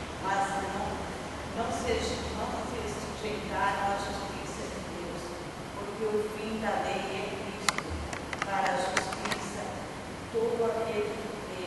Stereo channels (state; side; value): identical; both; correlation 1.00